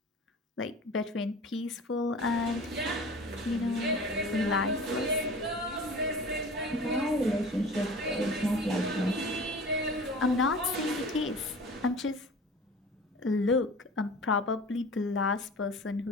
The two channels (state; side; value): normal; both; correlation 0.40